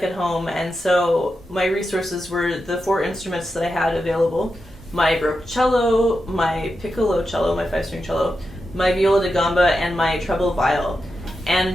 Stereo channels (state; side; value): normal; both; correlation 0.88